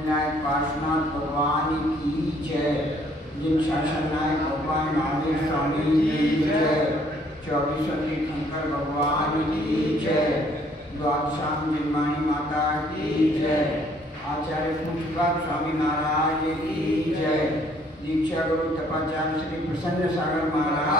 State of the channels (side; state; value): both; normal; correlation 0.62